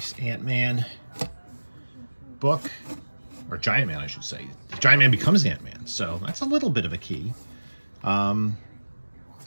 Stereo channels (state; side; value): inverted; both; correlation -1.00